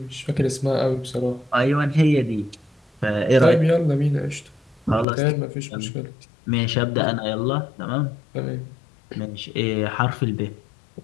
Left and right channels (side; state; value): right; drops out; at 5.1 s